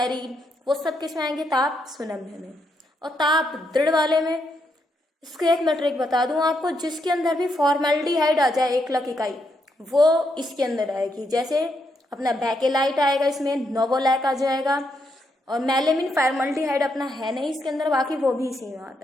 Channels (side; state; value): both; normal; correlation 0.79